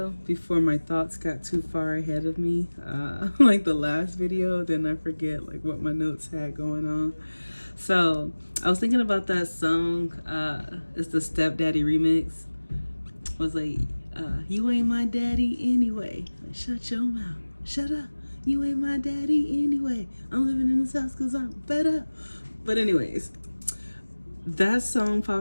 before my thoughts got too far ahead of me, like the last video, then I forget like what my notes had going on. So I was thinking about that song, it's the Stepdaddy remix, was like, you ain't my daddy anyway, like, shut your mouth, shut up, you ain't my daddy anyway, I'm living in this house cause I'm fed up. But anyways, that song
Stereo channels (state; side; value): inverted; both; correlation -1.00